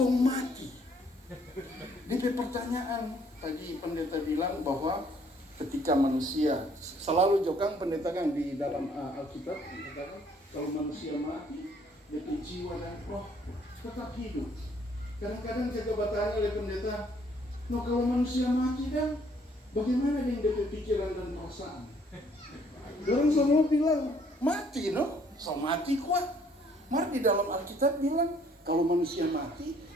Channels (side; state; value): both; normal; correlation 0.63